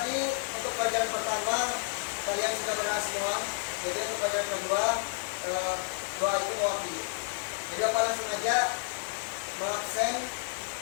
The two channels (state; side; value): silent; right; 57 dB below the other